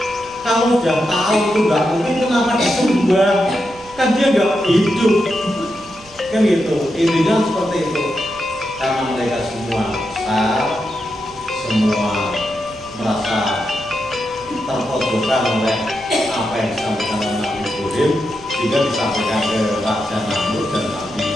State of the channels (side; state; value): right; noise; rumble, 23 dB below the sound